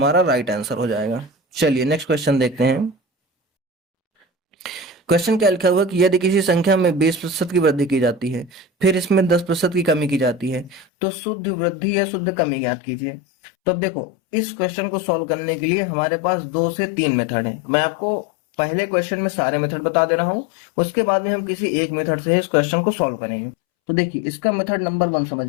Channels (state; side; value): drops out; right; at 10.9 s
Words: राइट आंसर हो जाएगा। चलिए नेक्स्ट क्वेश्चन देखते हैं। क्वेश्चन क्या लिखा हुआ है कि यदि किसी संख्या में 20% की वृद्धि की जाती है फिर इसमें 10% की कमी की जाती है तो शुद्ध वृद्धि या शुद्ध कमी ज्ञात कीजिए। तो अब देखो इस क्वेश्चन को सॉल्व करने के लिए हमारे पास 2 से 3 मेथड हैं। मैं आपको पहले क्वेश्चन में सारे मेथड बता दे रहा हूँ, उसके बाद में हम किसी एक मेथड से इस क्वेश्चन को सॉल्व करेंगे। तो देखिए इसका मेथड नंबर 1